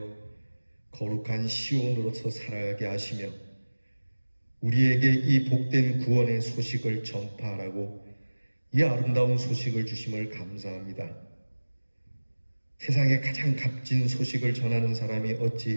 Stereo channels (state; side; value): inverted; both; correlation -1.00